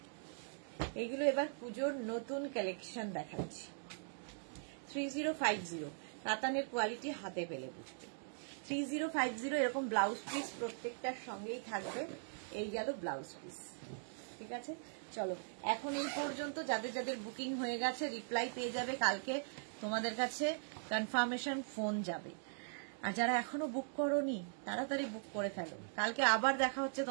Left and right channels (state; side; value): silent; left; digital silence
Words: এইগুলো এবার পুজোর নতুন কালেকশন দেখাচ্ছি। 3050 কাতানের কোয়ালিটি হাতে পেলে বুঝবে। 3050 এরকম ব্লাউজ পিস প্রত্যেকটার সঙ্গেই থাকবে। এই গেল ব্লাউজ পিস, ঠিক আছে। চলো এখন এই পর্যন্ত, যাদের যাদের বুকিং হয়ে গেছে রিপ্লাই পেয়ে যাবে, কালকে তোমাদের কাছে কনফার্মেশন ফোন যাবে। আর যারা এখনো বুক করোনি তাড়াতাড়ি বুক করে ফেলো, কালকে আবার দেখা হচ্ছে